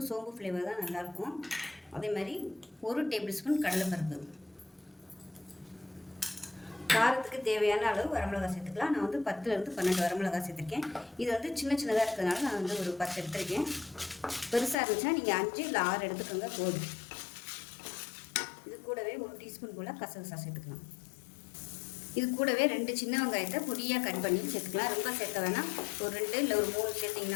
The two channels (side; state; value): right; drops out; at 14.8 s